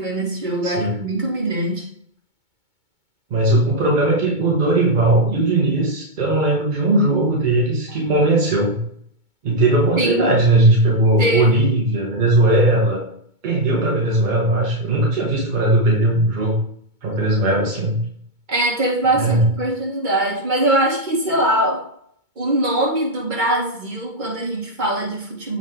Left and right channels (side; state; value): left; late; 2.2 ms